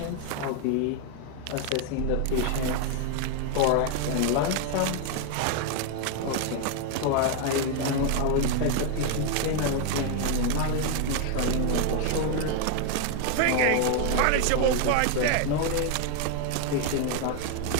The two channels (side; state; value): both; different; correlation 0.01